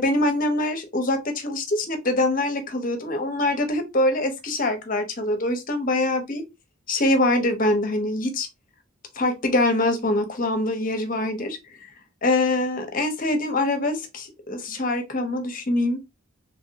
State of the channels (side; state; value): both; normal; correlation 0.24